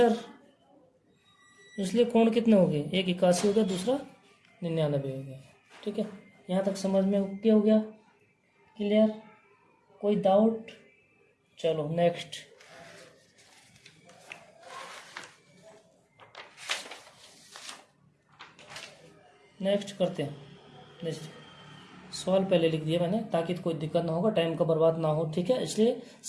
इसलिए कोण कितने हो गए, एक 81 हो गया, दूसरा 99 हो गया, ठीक है। यहाँ तक समझ में ओके हो गया, क्लियर, कोई डाउट। चलो नेक्स्ट, नेक्स्ट करते हैं। नेक्स्ट सवाल पहले लिख दिया मैंने ताकि कोई दिक्कत ना होगा, टाइम का बर्बाद ना हो, ठीक है। इसलिए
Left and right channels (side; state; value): both; identical; correlation 1.00